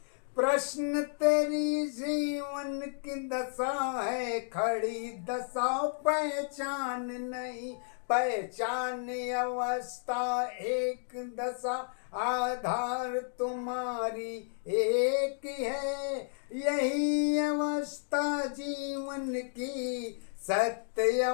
प्रश्न तेरी जीवन की दशा है खड़ी, दशा पहचान नहीं, पहचान अवस्था एक दशा, आधार तुम्हारी एक है, यही अवस्था जीवन की, सत्य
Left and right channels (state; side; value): silent; right; digital silence